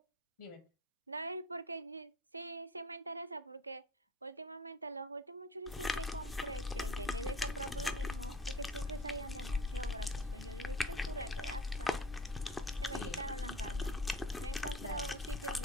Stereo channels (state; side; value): normal; both; correlation 0.46